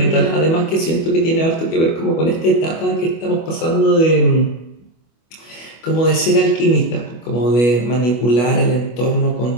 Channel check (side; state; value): right; late; 25 ms